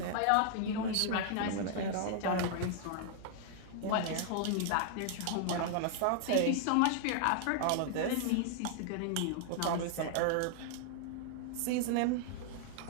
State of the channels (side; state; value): both; different; correlation 0.00